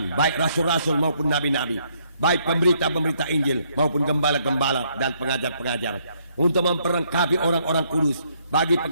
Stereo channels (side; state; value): both; inverted; correlation -0.70